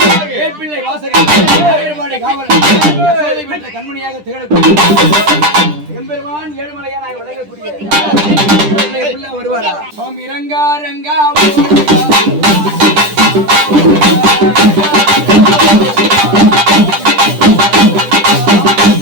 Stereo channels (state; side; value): late; left; 10 ms